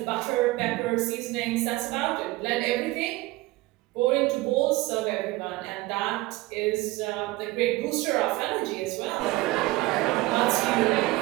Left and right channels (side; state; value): left; quieter; 19.8 dB